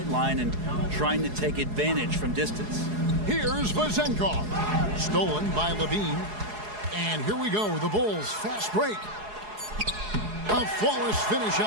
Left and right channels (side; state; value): left; late; 4.8 ms